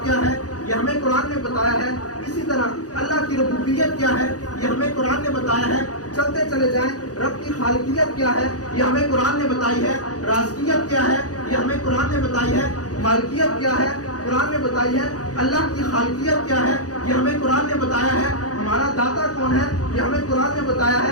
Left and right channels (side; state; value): right; late; 0.67 ms